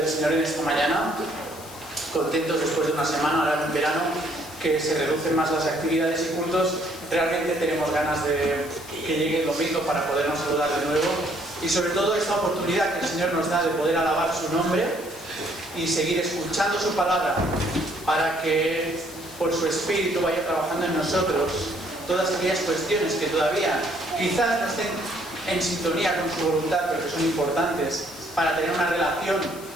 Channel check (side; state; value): left; noise; hiss, 17 dB below the sound